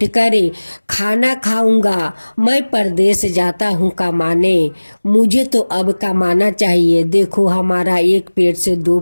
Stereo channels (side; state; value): both; inverted; correlation -1.00